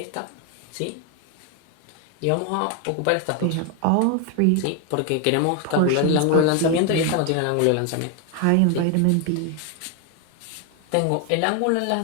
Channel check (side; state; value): both; different; correlation 0.01